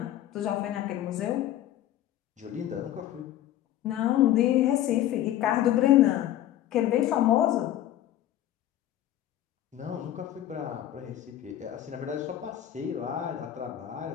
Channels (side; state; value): right; quieter; 12.5 dB